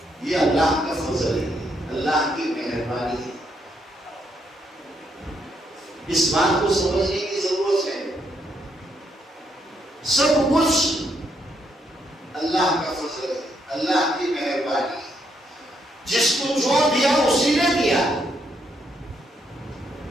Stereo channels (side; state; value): both; normal; correlation 0.76